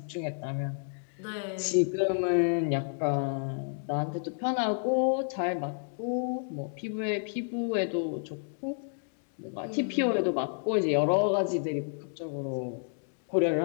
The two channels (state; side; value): silent; right; digital silence